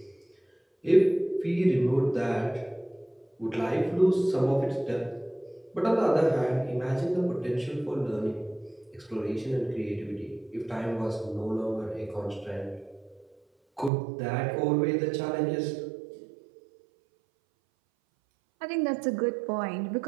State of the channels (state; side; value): drops out; left; at 13.9 s